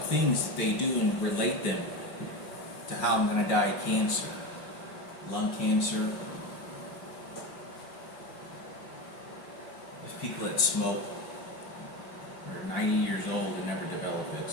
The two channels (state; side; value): late; right; 5.5 ms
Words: things that they do and relate them to how I'm going to die of cancer, lung cancer. There's people that smoke, are 90 years old and never develop it,